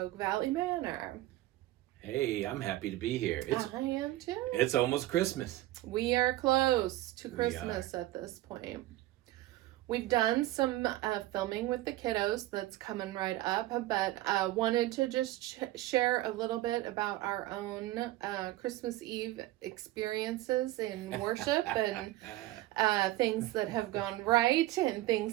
Valley Manor. Hey, I'm happy to be here. I am too. It's almost Christmas. We are close to Christmas at this point. We've done some filming with the kiddos that's coming right up, but wanted to just share a little bit about our own Christmas Eve experiences in worship and things that have gone right and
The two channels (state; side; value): quieter; left; 16.5 dB